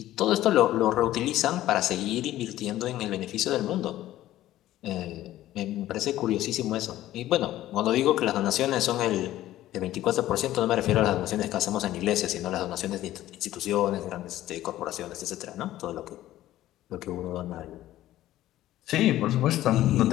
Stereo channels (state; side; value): quieter; right; 14.3 dB